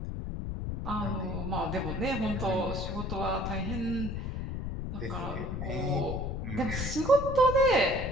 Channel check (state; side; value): noise; left; rumble, 4 dB below the sound